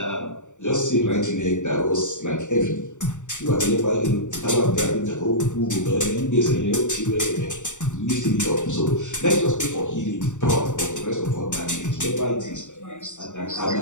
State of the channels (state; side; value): late; right; 0.85 ms